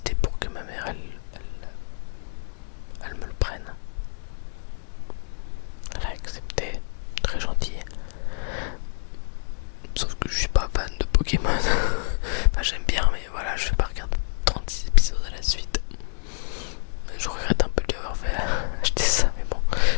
pour que ma mère elle me le prenne. Elle a accepté, très gentil. Sauf que je suis pas fan de Pokémon. Enfin j'aime bien, mais voilà, je vais pas regarder 36 épisodes à la suite. Je regrette un peu d'avoir fait acheter ça, mais bon,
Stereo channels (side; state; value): right; silent; digital silence